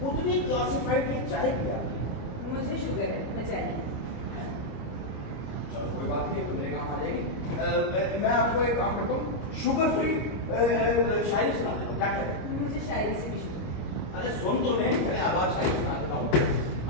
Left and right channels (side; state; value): right; late; 26 ms